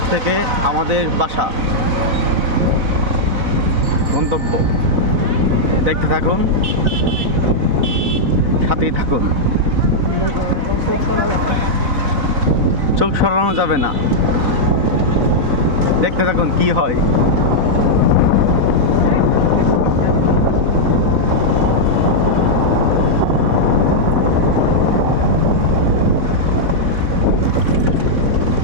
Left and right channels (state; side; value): late; left; 4.1 ms